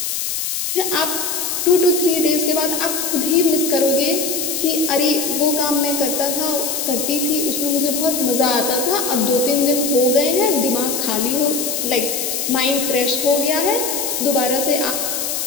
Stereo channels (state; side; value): noise; left; hiss, 2 dB below the sound